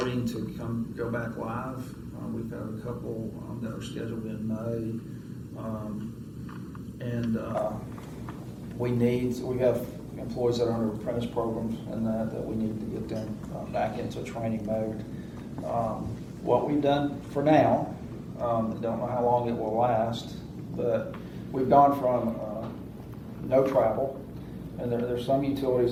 to go back live. We've got a couple that are scheduled in May, we have employees that are under apprentice programs and that we need to get them back into training mode. What we've done for now, don't know how long it will last, but we've gone from no travel, and there's some utilities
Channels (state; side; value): identical; both; correlation 1.00